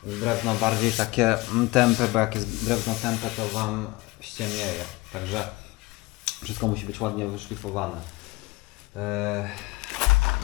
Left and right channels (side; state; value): right; quieter; 22.5 dB